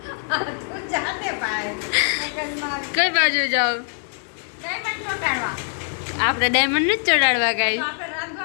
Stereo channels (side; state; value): right; silent; 63 dB below the other